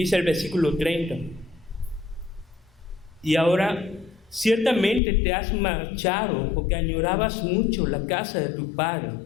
el versículo 30. Y ahora, ciertamente te has marchado porque añorabas mucho la casa de tu padre.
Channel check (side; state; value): right; drops out; at 5.0 s